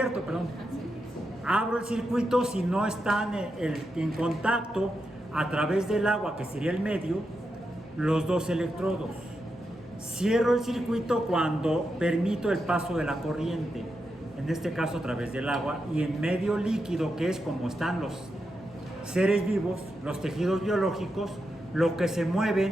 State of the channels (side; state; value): both; normal; correlation 0.86